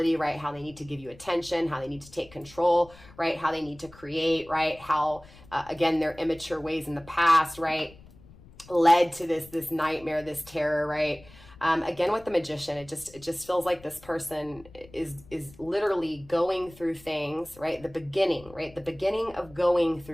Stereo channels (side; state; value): left; noise; rumble, 23 dB below the sound